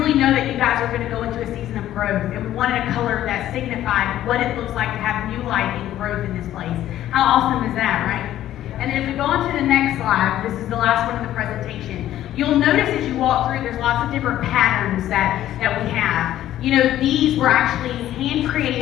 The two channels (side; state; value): right; quieter; 12.8 dB